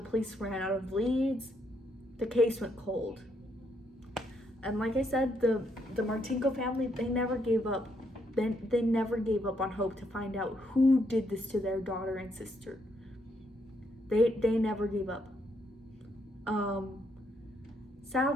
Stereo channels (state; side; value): normal; both; correlation 0.75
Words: police ran out of leads, the case went cold. And like I said, the Martinko family, they never gave up. They never gave up on hope to find out who did this to their daughter and sister. They never gave up.